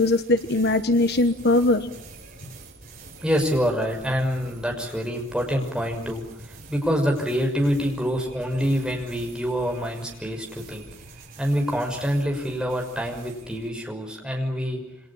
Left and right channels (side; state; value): both; normal; correlation 0.63